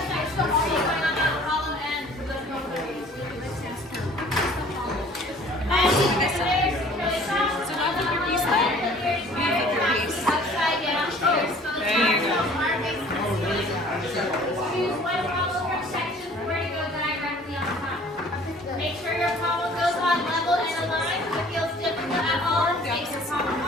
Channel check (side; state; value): both; normal; correlation 0.51